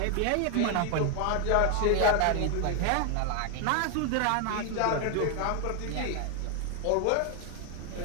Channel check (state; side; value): different; both; correlation 0.00